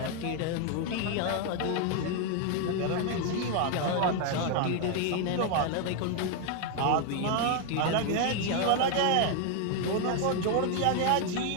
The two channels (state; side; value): different; both; correlation 0.01